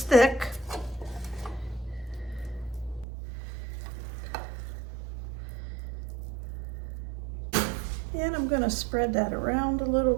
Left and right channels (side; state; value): left; drops out; at 3.1 s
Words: thick. And I'm going to spread that around a little